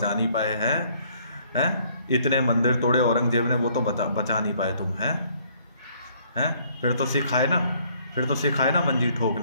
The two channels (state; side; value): inverted; both; correlation -0.63